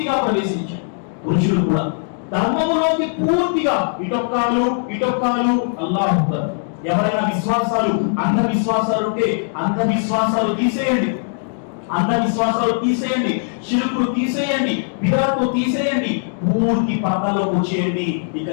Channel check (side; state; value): right; silent; digital silence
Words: ప్రవేశించారు. పురుషులు కూడా ధర్మములోకి పూర్తిగా ఇటొక్కాలు అల్లాహు అక్బర్. ఎవరైనా విశ్వాసాలు అంధవిశ్వాసాలు ఉంటే అంధవిశ్వాసాలు తీసేయండి, అంధవిశ్వాసాలు తీసేయండి, షిర్కులు తీసేయండి, బిదాత్ను తీసేయండి, పూర్తి పర్దాలోకి వచ్చేయండి. ఇక